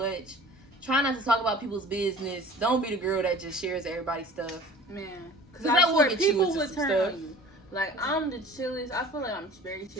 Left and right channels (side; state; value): both; normal; correlation 0.44